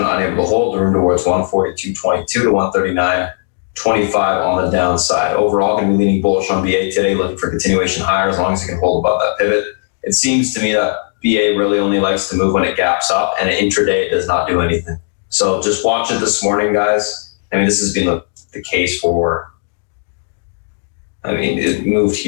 unable to hold, room towards 142.22 to 139.25 on the downside. Overall, going to be leaning bullish on BA today, looking for continuation higher as long as it can hold above that pivot. It seems to me that BA really only likes to move when it gaps up, and intraday it does not do anything. So just watch it this morning, guys. I mean, this has been the case for, it moved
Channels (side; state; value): right; silent; digital silence